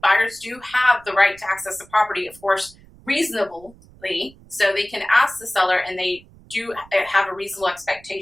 Buyers do have the right to access the property, of course, reasonably. So they can ask the seller, and they do have a reasonable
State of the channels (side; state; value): right; noise; rumble, 25 dB below the sound